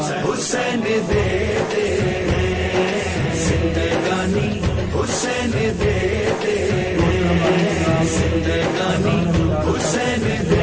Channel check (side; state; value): both; identical; correlation 1.00